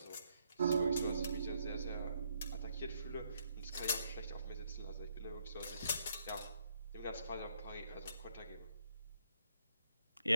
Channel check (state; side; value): inverted; both; correlation -0.73